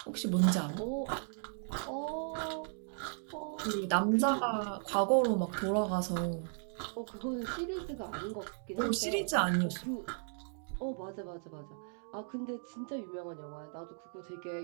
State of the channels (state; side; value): silent; left; 54 dB below the other